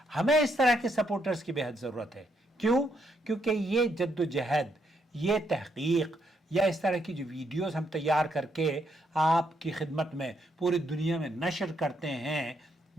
ہمیں اس طرح کے سپورٹرز کی بہت ضرورت ہے۔ کیوں؟ کیونکہ یہ جد و جہد، یہ تحقیق یا اس طرح کی جو ویڈیوز ہم تیار کر کے آپ کی خدمت میں پوری دنیا میں نشر کرتے ہیں،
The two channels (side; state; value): both; normal; correlation 0.76